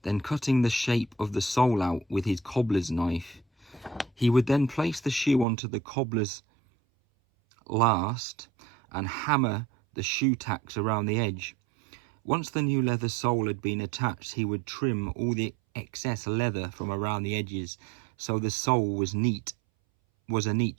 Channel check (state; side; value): drops out; left; at 5.5 s